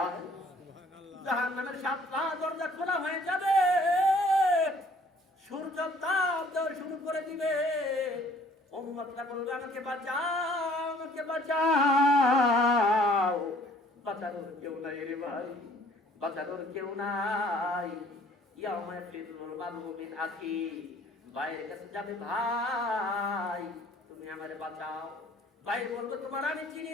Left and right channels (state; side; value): normal; both; correlation 0.57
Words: জাহান্নামের 7টা দরজা খোলা হয়ে যাবে, সূর্য তাপ দেওয়া শুরু করে দিবে। উম্মতরা বলবে আমাকে বাঁচাও, আমাকে বাঁচাও। বাঁচানোর কেউ নাই রে ভাই, বাঁচানোর কেউ নাই। ইয়াউমা ফিরুল মারউ মিন আখি, ভাইয়ের কাছে যাবে, ভাই তুমি আমারে বাঁচাও। ভাই বলবো তোমার আমি চিনি